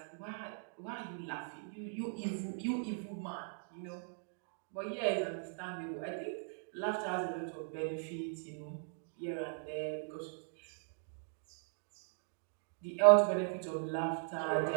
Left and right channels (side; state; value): left; silent; digital silence